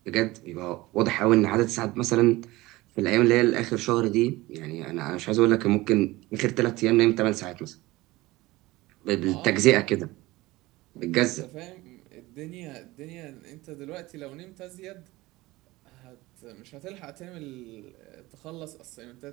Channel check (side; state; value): left; quieter; 19.7 dB